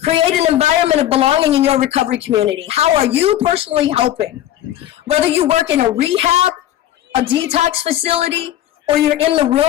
Create an environment of belonging in your recovery community. How are you personally helping? Whether you work in a rehab, a detox facility, or you're in the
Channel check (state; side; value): quieter; right; 12.5 dB